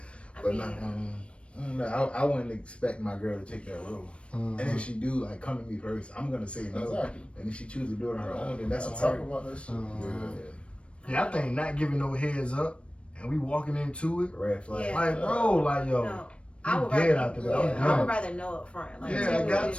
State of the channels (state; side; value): late; right; 0.060 ms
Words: I wouldn't expect my girl to take that road. And if she do, like, come to me first, I'm gonna say no. Exactly. And if she chooses to do it on her own, then that's on talk her. about that shit. Yeah, I think not giving no heads up and we walking into it. Red flag. Yeah. Like, bro, like, yo. No, I would dead rather, after that. I'm I done. would rather know up front. Like, Yeah, tell I me got what-